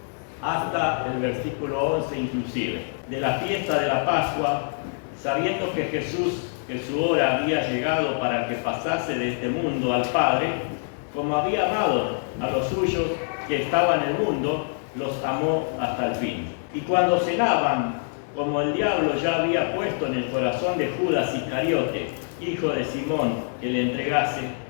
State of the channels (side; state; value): right; silent; 62 dB below the other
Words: hasta el versículo 11 inclusive. De la fiesta de la Pascua, sabiendo que Jesús, que su hora había llegado para que pasase de este mundo al Padre, como había amado a los suyos que estaban en el mundo, los amó hasta el fin. Y cuando cenaban, como el diablo ya había puesto en el corazón de Judas Iscariote, hijo de Simón, que le entregase,